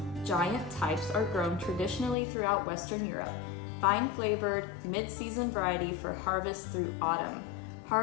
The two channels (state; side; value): drops out; right; at 2.1 s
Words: giant types are grown traditionally throughout Western Europe. Fine flavored, mid-season variety for harvest through autumn.